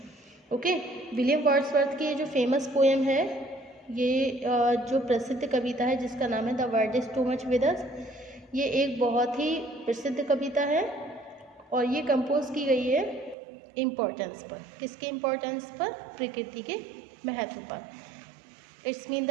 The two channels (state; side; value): drops out; left; at 13.4 s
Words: Okay, William Wordsworth की ये जो famous poem है, ये जो प्रसिद्ध कविता है जिसका नाम है the word is to much with अस, ये एक बहुत ही प्रसिद्ध कविता है और ये कंपोज की गई है इम्पोर्टेंस पर. किसके इम्पोर्टेंस पर? प्रकृति के महत्व पर. इट्स मीन